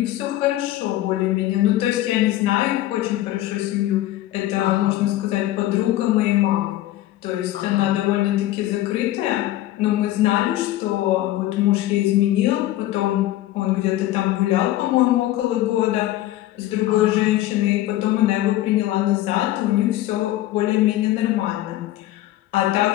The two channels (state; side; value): quieter; right; 14.9 dB